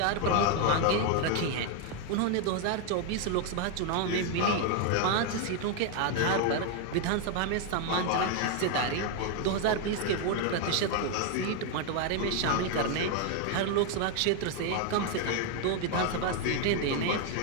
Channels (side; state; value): both; different; correlation 0.01